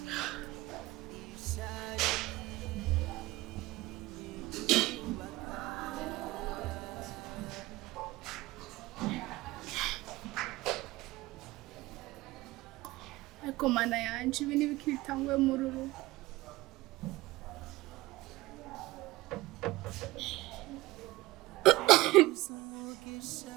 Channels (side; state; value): left; quieter; 19.3 dB